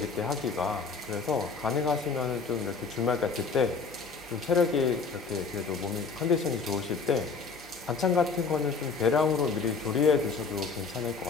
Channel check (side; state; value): right; quieter; 4.8 dB